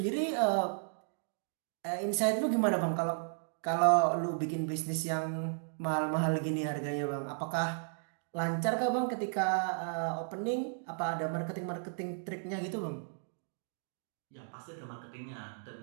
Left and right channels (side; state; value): left; silent; digital silence